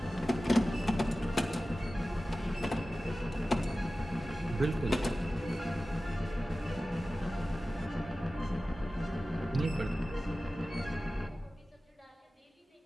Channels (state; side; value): normal; both; correlation 0.96